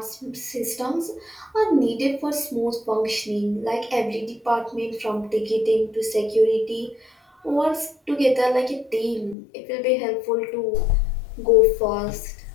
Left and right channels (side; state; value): right; drops out; at 9.3 s